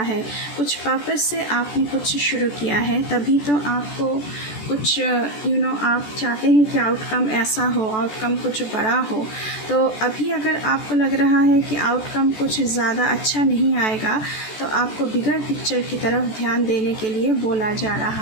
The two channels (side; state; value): right; late; 14 ms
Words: है। कुछ पर्पस से आपने कुछ शुरू किया है, तभी तो आपको कुछ आप चाहते हैं कि आउटकम ऐसा हो, आउटकम कुछ बड़ा हो। तो अभी अगर आपको लग रहा है कि आउटकम कुछ ज़्यादा अच्छा नहीं आएगा, तो आपको बिगर पिक्चर की तरफ ध्यान देने के लिए बोला जा